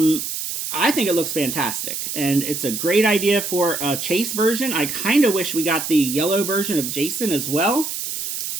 I think it looks fantastic, and it's a great idea for a Chase version. I kind of wish we got the yellow version of Jason as well.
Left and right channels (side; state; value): right; noise; hiss, 5 dB below the sound